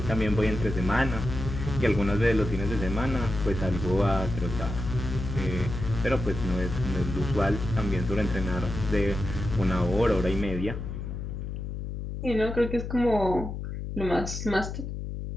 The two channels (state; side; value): noise; left; hum, 6 dB below the sound